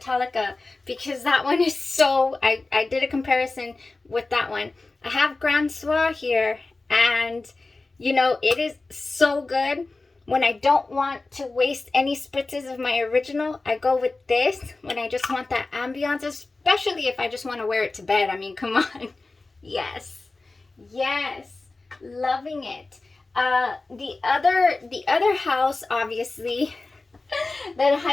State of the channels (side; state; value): right; quieter; 3.4 dB